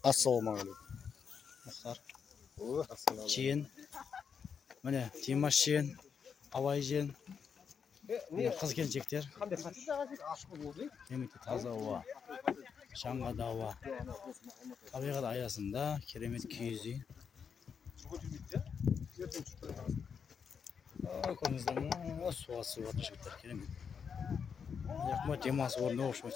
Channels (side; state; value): right; quieter; 6.6 dB